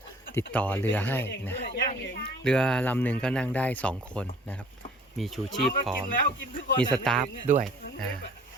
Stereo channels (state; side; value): normal; both; correlation 0.52